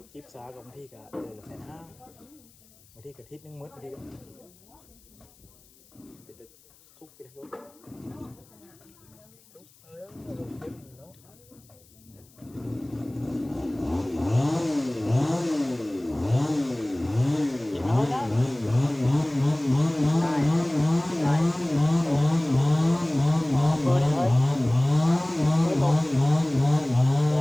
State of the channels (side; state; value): left; noise; hiss, 28 dB below the sound